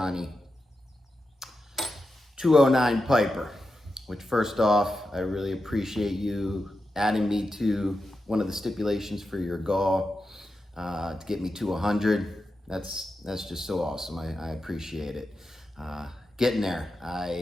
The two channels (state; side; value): normal; both; correlation 0.89